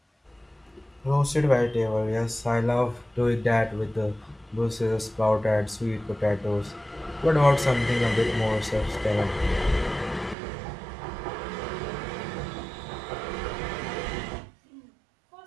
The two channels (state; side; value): drops out; left; at 10.4 s